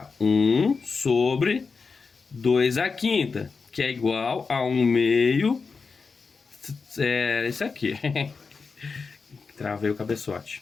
1 sobre 2 à quinta, que é igual a 1 meio. Isso aqui. Travei o cabeçote.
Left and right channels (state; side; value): quieter; right; 4.8 dB